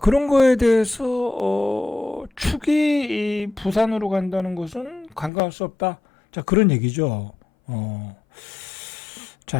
거에 대해서 축이 부산으로 간다는 것은 간과할 수 없다. 자, 그런 얘기죠.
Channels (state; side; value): drops out; right; at 5.3 s